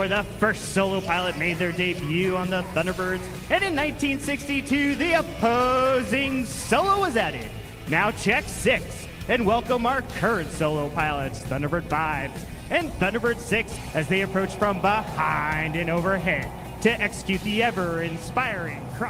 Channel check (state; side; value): identical; both; correlation 1.00